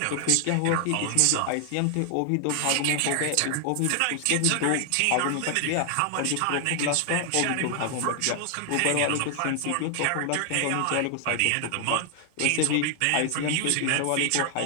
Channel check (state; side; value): different; both; correlation 0.00